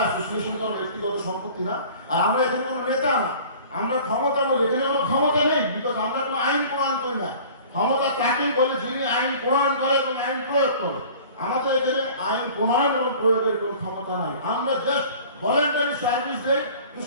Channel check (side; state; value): both; inverted; correlation -0.45